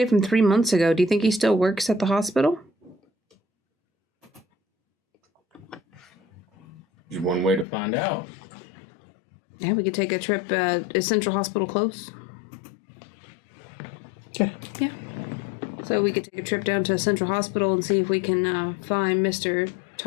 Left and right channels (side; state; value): right; drops out; at 7.7 s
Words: from 3 months ago, do you think he still works at the hospital? There's one way to find out. Yeah, we could take a trip. Is Central Hospital close? Yeah. So we could take a trip down to Central Hospital and see if we can find Mr.